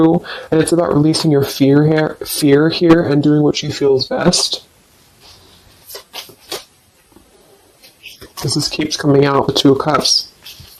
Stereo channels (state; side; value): identical; both; correlation 1.00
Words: and it's about releasing your fear here and doing what you feel is best. Because this keeps coming out, the Two of Cups.